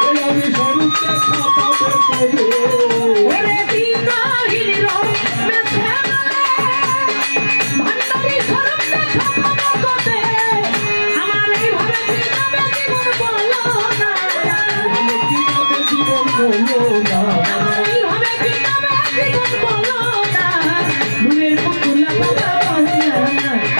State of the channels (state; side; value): inverted; both; correlation -1.00